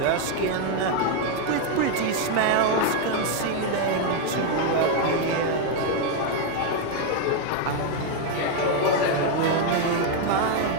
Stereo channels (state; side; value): different; both; correlation 0.01